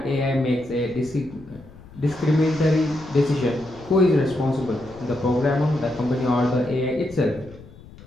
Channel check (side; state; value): left; noise; rumble, 20 dB below the sound